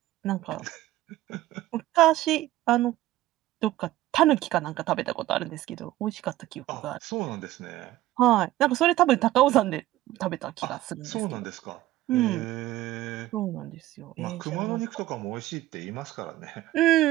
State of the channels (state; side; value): quieter; left; 15.4 dB